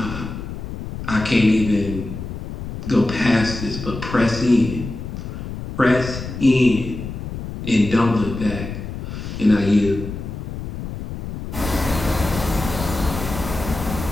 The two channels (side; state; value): left; noise; rumble, 7 dB below the sound